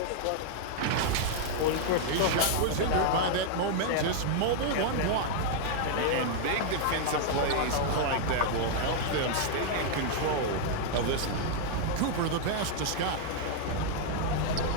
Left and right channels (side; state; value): both; different; correlation -0.01